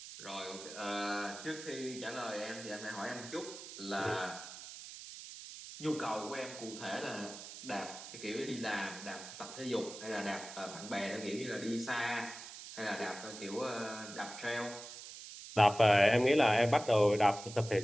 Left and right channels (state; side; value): noise; right; hiss, 12 dB below the sound